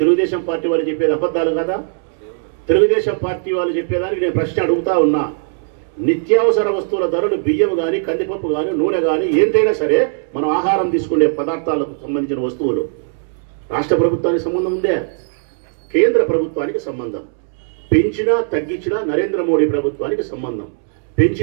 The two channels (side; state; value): left; silent; 67 dB below the other